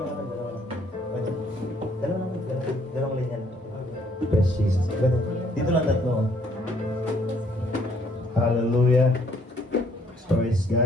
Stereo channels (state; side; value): normal; both; correlation 0.65